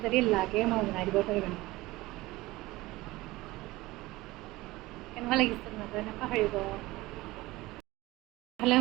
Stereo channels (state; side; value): quieter; left; 19.5 dB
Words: যদি লাগে মই বনাই দিব পাৰিম কেনেকুৱা লাগিছে নাজানে পাহৰিব ইফালে